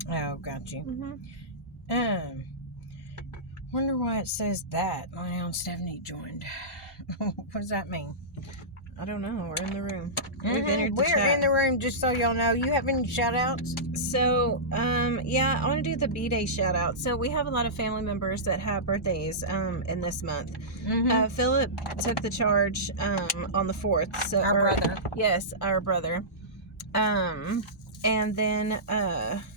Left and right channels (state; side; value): normal; both; correlation -0.17